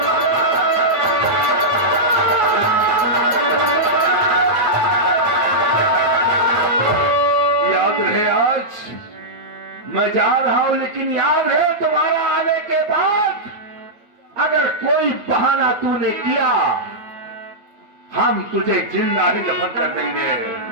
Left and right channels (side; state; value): left; late; 8.8 ms